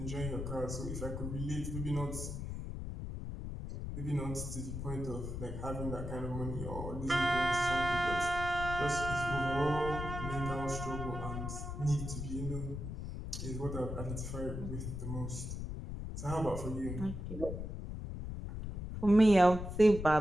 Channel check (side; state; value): left; noise; rumble, 6 dB below the sound